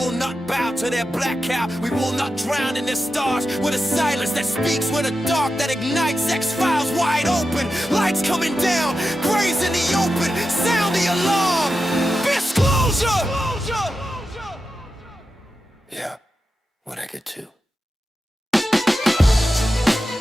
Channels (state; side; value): normal; both; correlation 0.90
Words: not bow to their black cow, we will not drown in their stars. With a silence that speaks, with a dark that ignites, X-Files wide open, lights coming down, graves in the open, sound the alarm. Disclosure! Yeah, what I get to.